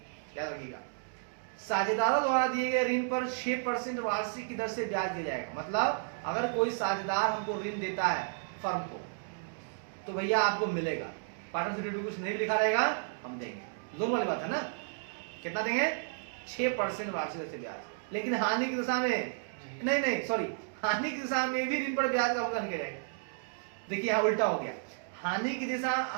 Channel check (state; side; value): silent; left; digital silence